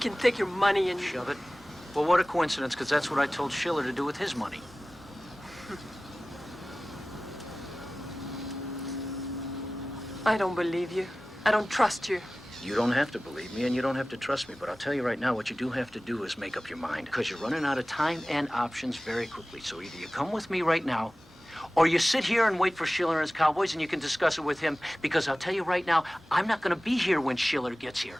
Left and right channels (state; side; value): normal; both; correlation 0.97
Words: take your money and... Shove it. Well, what a coincidence, because that's what I told Schiller to do with his money. I don't believe you. I don't trust you. You don't have to believe me, and you don't have to trust me, but I'll tell you right now, what you do have to do is make up your mind, because you're running out of time and options very quickly. So either you come with me right now, or you sit here and wait for Schiller and his cowboys, and you can discuss it with him, because I'll tell you right now, I'm not going to be here when Schiller gets here.